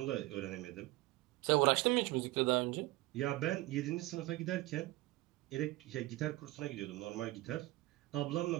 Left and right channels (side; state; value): left; quieter; 19.1 dB